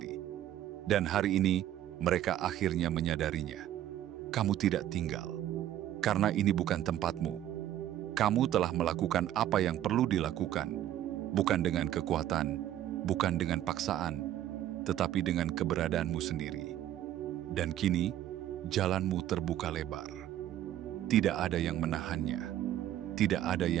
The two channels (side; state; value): left; quieter; 12.1 dB